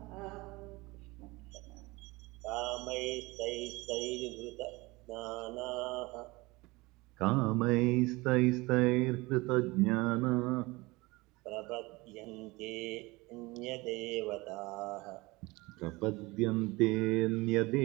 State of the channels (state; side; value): quieter; left; 22.9 dB